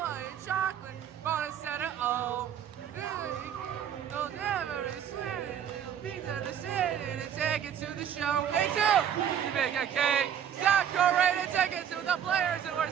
and chocolate, gonna set it all. They'll never sweet it. Pizza to sit in and take it to the show. Hey, two! You make a cake, stack Decorated tickets to the players who are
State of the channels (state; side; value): quieter; left; 9.1 dB